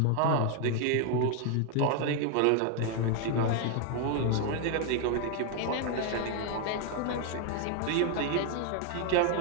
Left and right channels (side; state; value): both; different; correlation 0.00